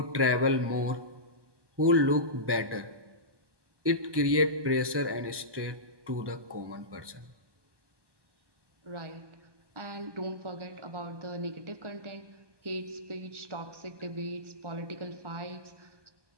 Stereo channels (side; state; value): left; late; 1.2 ms